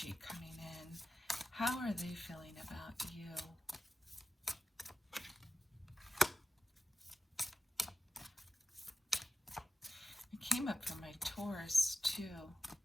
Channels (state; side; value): normal; both; correlation 0.93